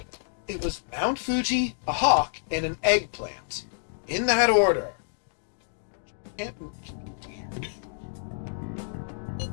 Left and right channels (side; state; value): right; silent; digital silence